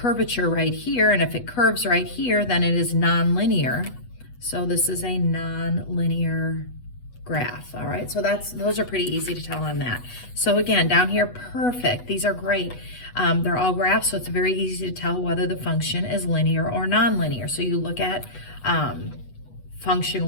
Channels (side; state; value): right; late; 8.1 ms